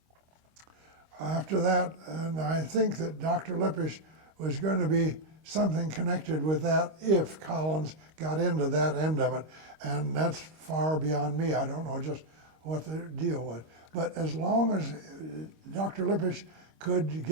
after that, and I think that Dr. Lippisch was going to be something connected with that if Collins got into that end of it. And that's far beyond me. I don't know just what the deal was. But as long as Dr. Lippisch could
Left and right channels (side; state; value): left; late; 25 ms